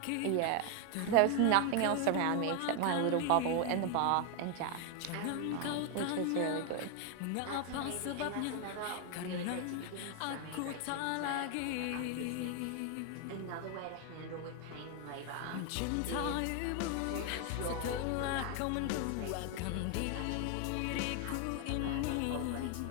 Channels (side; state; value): both; different; correlation 0.01